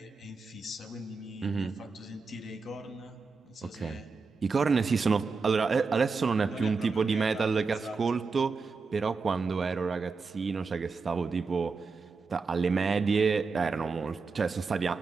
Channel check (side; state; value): left; quieter; 4.5 dB